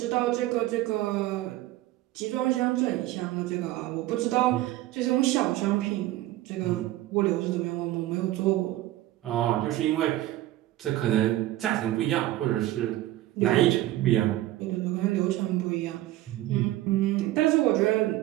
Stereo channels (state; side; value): quieter; left; 15.6 dB